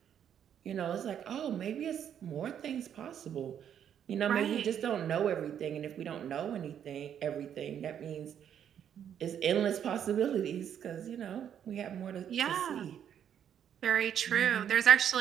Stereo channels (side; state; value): left; quieter; 9.1 dB